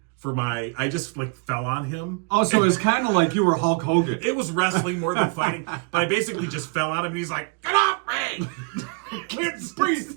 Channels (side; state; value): left; quieter; 36.4 dB